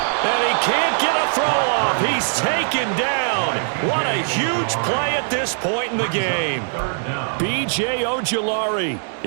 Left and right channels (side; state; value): left; silent; digital silence